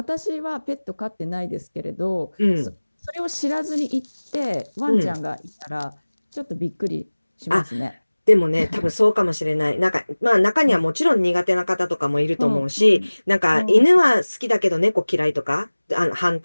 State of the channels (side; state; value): both; inverted; correlation -1.00